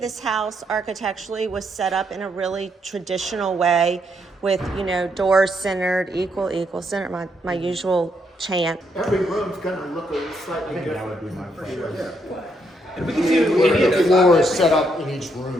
house architecturally was set up in a really traditional way with, you know, doors centered, equal, centered, my usual chant. Every room's gonna look a slightly different. That would be my preference. And we can do any of The those. floor is set up in each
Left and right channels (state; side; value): normal; both; correlation 0.76